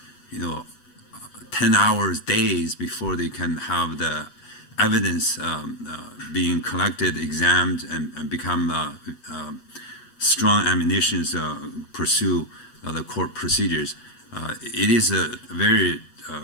10 hours, days before they can have the evidence being collected, examined, and become strong ammunition to pursue the court procedures. It is a very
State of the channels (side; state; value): right; late; 8.2 ms